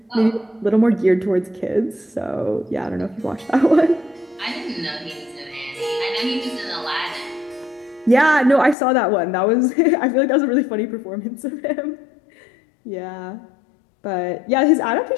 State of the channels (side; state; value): right; drops out; at 8.8 s